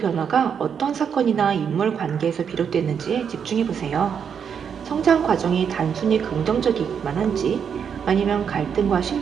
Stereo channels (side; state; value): left; quieter; 7.3 dB